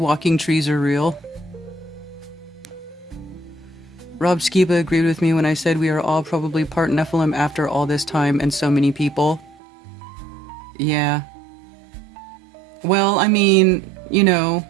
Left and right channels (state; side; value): drops out; left; at 9.6 s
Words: trees are real. Rob Skiba agreed with me when I said we are all probably part Nephilim after all this time and so many people. Yeah. Well, I mean, you know,